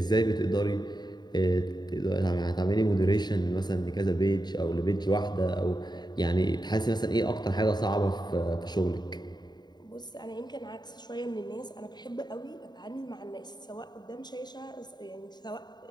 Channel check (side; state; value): right; late; 0.20 ms